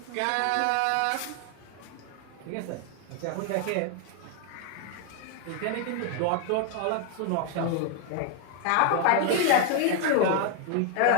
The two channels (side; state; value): both; different; correlation 0.01